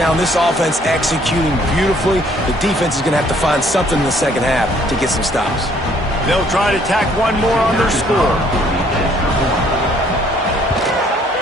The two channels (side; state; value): both; normal; correlation 0.62